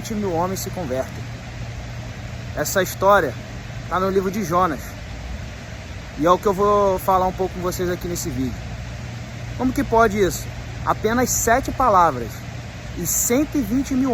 mil homens se convertem. Essa história está no livro de Jonas e é o que eu vou falar um pouco com vocês aqui nesse vídeo. Como que pode isso? Apenas 7 palavras e 120 mil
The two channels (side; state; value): both; identical; correlation 1.00